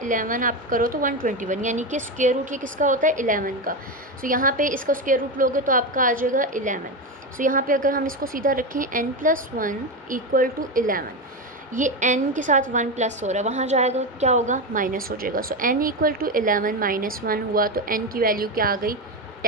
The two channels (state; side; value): normal; both; correlation 0.15